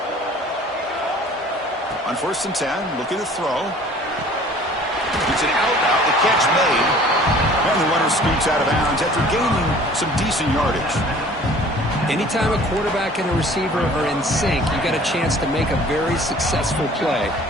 On 1st and 10, looking to throw. It's an out route, the catch made. And the runner scoots out of bounds after gaining some decent yardage. Anytime a quarterback and a receiver are in sync, you got a chance to make a very successful play.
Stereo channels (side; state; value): both; normal; correlation 0.50